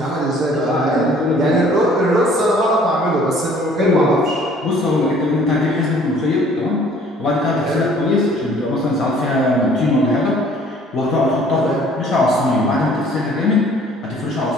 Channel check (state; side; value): normal; both; correlation 0.55